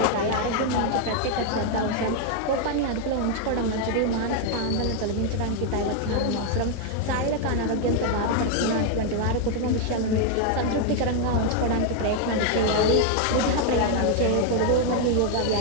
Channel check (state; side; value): different; both; correlation 0.00